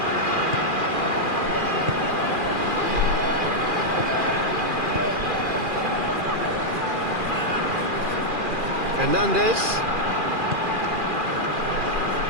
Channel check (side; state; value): left; late; 2.4 ms